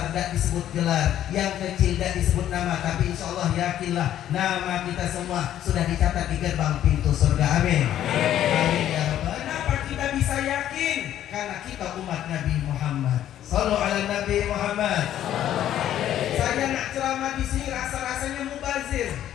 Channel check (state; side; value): quieter; right; 11.6 dB